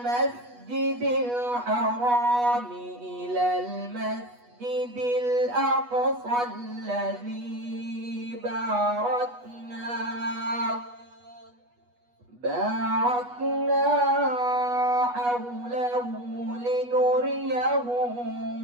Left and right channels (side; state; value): left; late; 8.2 ms